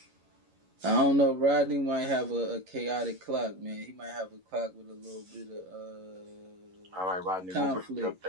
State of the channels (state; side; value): late; left; 11 ms